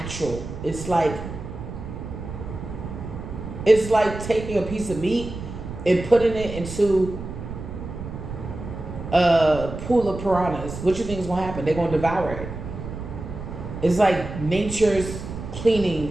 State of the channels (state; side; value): noise; right; rumble, 9 dB below the sound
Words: It's like taking a piece of meat and putting it into a pool of piranhas. What you think is going to happen? They're going to devour it. It's like nature's